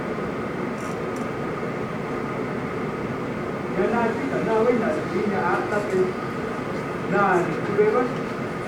Nah, kita nak wina ini atas itu. Nah, itu bebas.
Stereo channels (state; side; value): identical; both; correlation 1.00